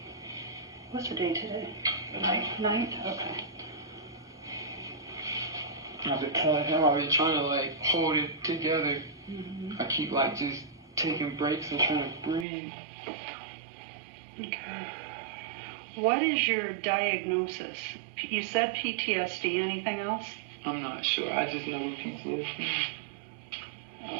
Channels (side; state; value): left; drops out; at 12.5 s